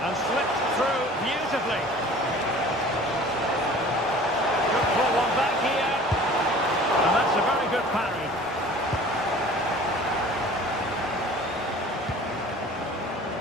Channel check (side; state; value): both; normal; correlation 0.46